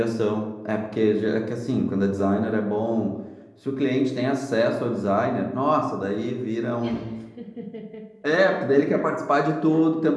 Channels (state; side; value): identical; both; correlation 1.00